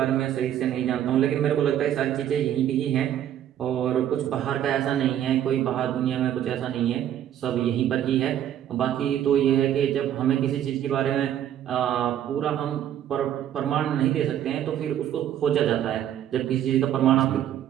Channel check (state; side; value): quieter; left; 10.8 dB